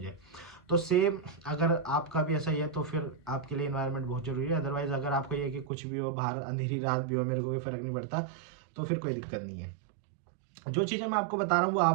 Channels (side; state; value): left; drops out; at 5.7 s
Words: तो सेम अगर आपका भी ऐसा ही है तो फिर आपके लिए इन्वायरमेंट बहुत ज़रूरी है। अदरवाइज़ अगर आपको ये है कि कुछ भी हो, बाहर अंधेरी रात भी हो, मेरे को कोई फ़र्क नहीं पड़ता, तो फिर कोई दिक्कत नहीं है। जो चीज़ें मैं आपको बता रहा हूँ वो